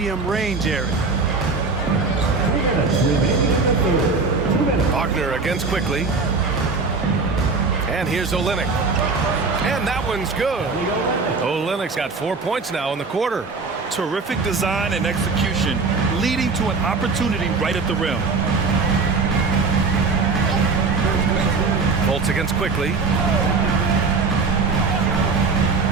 range area. Wagner against quickly. And here's Olynyk. And that one's good. Olynyk's got 4 points now in the quarter. Terrific design and execution, leading to an opportunity right at the rim. Bolts against quickly.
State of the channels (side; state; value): left; quieter; 4.3 dB